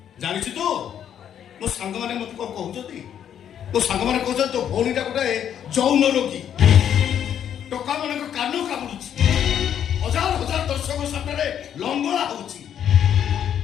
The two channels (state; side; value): quieter; right; 9.4 dB